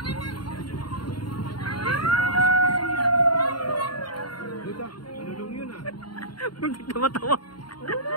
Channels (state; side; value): late; right; 0.72 ms